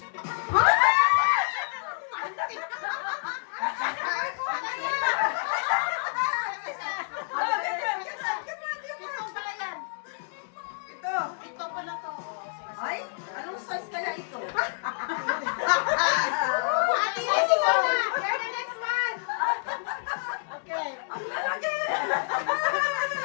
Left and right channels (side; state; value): right; silent; digital silence